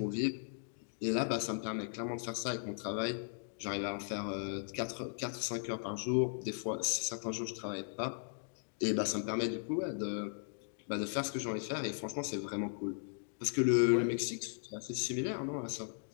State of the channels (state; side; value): silent; right; digital silence